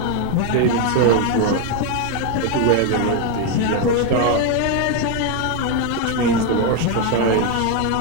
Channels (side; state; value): both; different; correlation 0.01